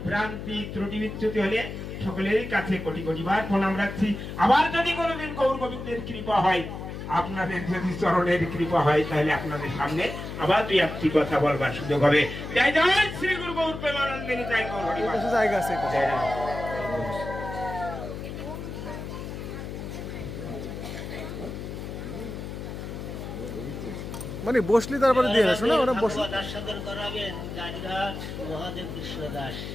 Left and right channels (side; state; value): left; noise; hum, 8 dB below the sound